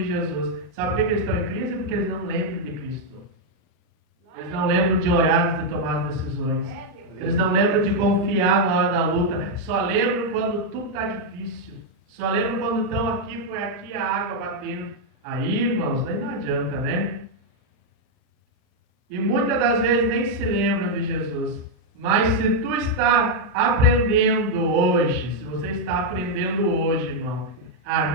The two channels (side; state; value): left; late; 39 ms